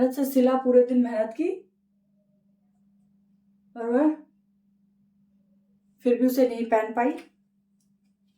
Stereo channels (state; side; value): identical; both; correlation 1.00